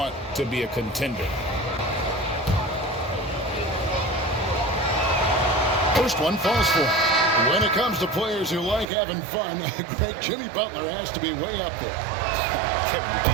to be a contender. First one falls for him. When it comes to players who like having fun, Greg, Jimmy Butler has to be way up there. Kevin, did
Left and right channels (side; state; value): left; drops out; at 8.8 s